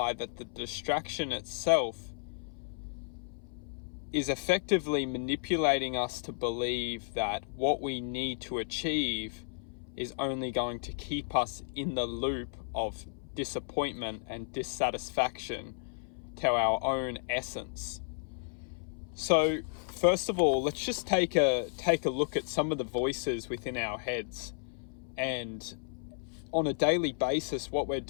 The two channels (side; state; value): right; silent; 56 dB below the other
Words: that the distraction itself is effectively manipulating us to believe that what we need to achieve is only going to keep us in the loop of disappointment and dissatisfaction to our own essence. So first of all, let's just take a look at some of the voices within our heads. And on a daily basis, what we're